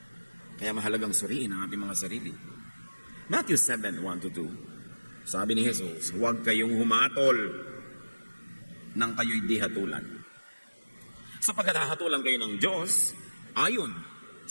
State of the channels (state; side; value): inverted; both; correlation -1.00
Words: Kaya mahalagang suriin ang ating mga sarili. Matthew 7, 1-2. Sabi ni Jesus, huwag kayong humatol nang kayo'y di hatulan. Sapagkat hahatulan kayo ng Diyos, ayon